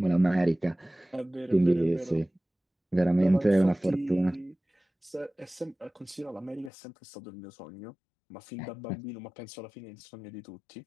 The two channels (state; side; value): drops out; right; at 6.7 s